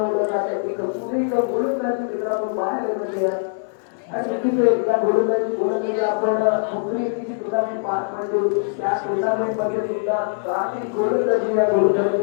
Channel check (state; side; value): silent; right; 63 dB below the other